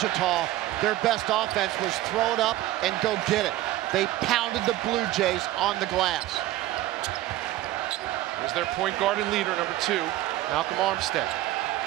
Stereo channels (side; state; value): left; quieter; 15.6 dB